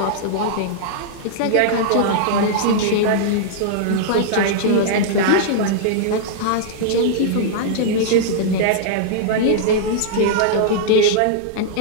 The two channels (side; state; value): both; different; correlation -0.02